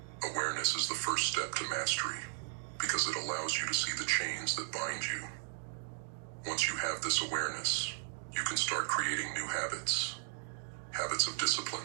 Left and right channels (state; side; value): silent; left; digital silence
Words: Awareness is the first step to mastery, because it allows you to see the chains that bind you. Once you have this awareness, you can start creating new habits. Habits of